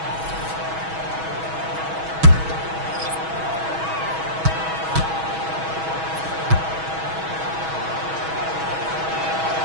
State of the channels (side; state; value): left; late; 6.2 ms